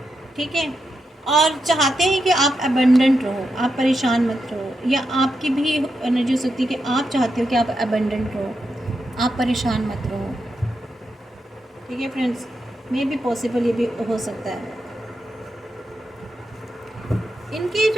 ठीक है, और चाहते हैं कि आप अबंडेंट रहो, आप परेशान मत रहो, या आपकी भी एनर्जी हो सकती है कि आप चाहते हो कि आप अबंडेंट रहो, आप परेशान मत रहो, ठीक है फ्रेंड्स, मे भी पॉसिबल ये भी हो सकता है। इनकी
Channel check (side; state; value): both; normal; correlation 0.85